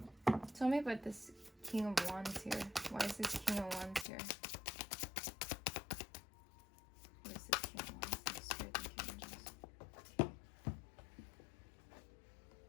Tell me about this King of Wands here? Why is this King of Wands here? What is this King of Wands?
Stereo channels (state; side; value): drops out; right; at 4.0 s